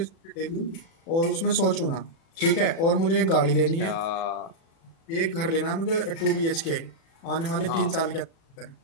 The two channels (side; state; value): right; late; 36 ms